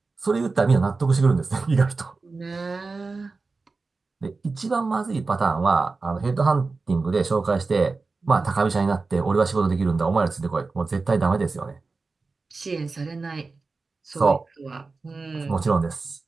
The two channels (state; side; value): quieter; left; 4.0 dB